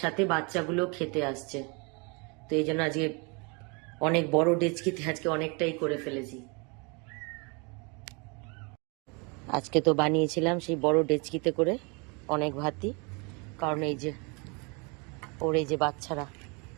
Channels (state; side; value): quieter; left; 31.4 dB